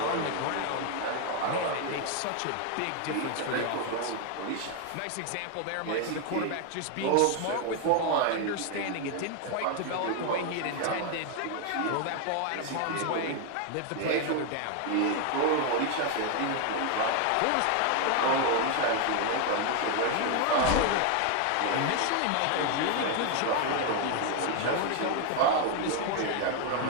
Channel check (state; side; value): different; both; correlation 0.01